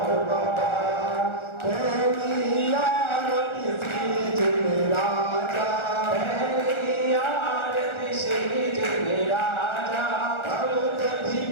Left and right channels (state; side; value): late; right; 1.4 ms